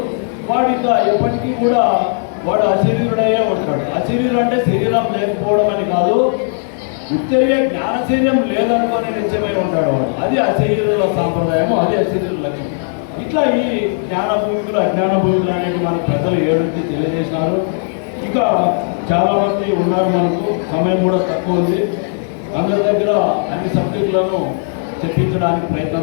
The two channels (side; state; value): right; silent; 60 dB below the other